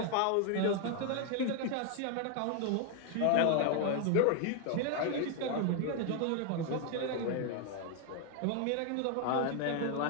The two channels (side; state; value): both; different; correlation 0.01